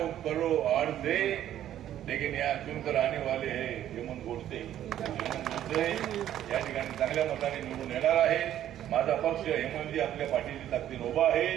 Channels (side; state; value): left; quieter; 11.6 dB